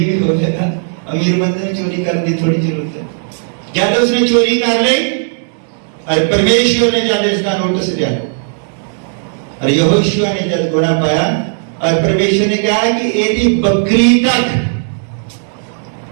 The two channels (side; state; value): left; silent; 65 dB below the other